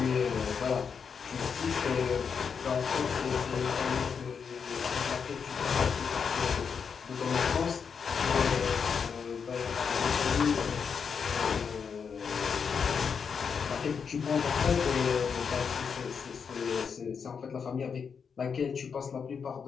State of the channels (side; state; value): right; quieter; 6.3 dB